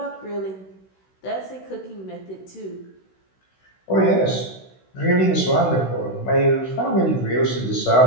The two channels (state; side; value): late; right; 16 ms